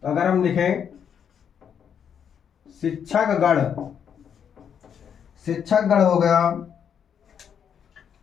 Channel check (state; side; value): quieter; right; 8.0 dB